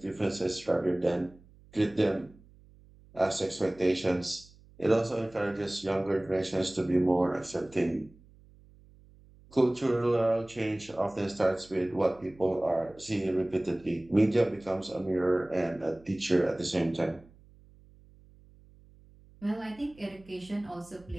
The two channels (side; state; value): right; noise; hum, 26 dB below the sound